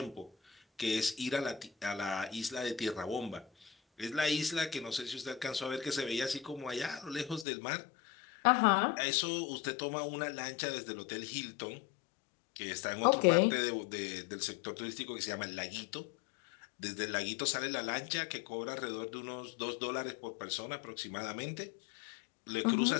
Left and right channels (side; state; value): right; drops out; at 7.5 s